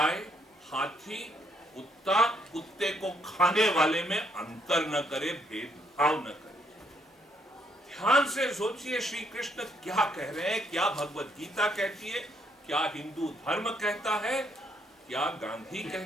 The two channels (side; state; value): both; normal; correlation 0.71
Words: हाथी, कुत्ते को खाने वाले में अंतर न करे, भेदभाव न करे। ध्यान से सोचिए श्री कृष्ण क्या कह रहे हैं, क्या भगवत गीता कहती है, क्या हिंदू धर्म कहता है, क्या गांधी